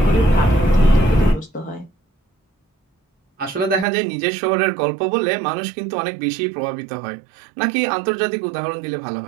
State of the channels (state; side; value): drops out; left; at 3.9 s